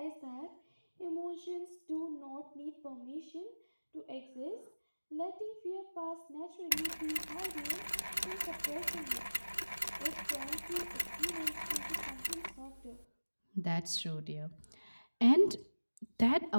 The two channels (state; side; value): inverted; both; correlation -1.00